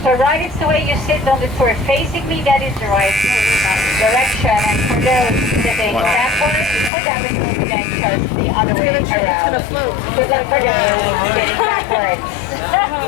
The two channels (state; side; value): drops out; right; at 6.9 s